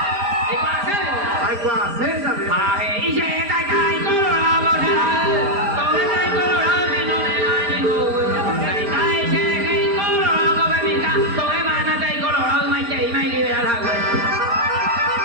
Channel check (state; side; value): late; left; 4.3 ms